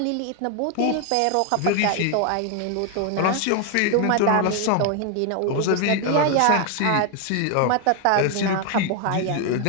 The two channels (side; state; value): both; different; correlation 0.01